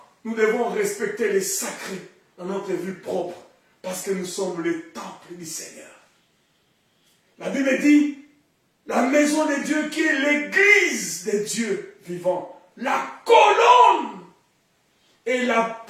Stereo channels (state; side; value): identical; both; correlation 1.00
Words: nous devons respecter les sacrés dans notre vie propre, parce que nous sommes le temple du Seigneur. La Bible dit, la maison de Dieu qui est l'église de Dieu vivant, la colonne et